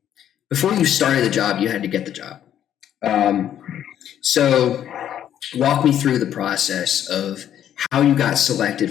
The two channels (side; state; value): right; quieter; 10.4 dB